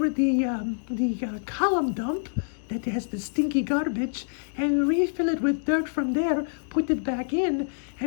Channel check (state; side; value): silent; right; digital silence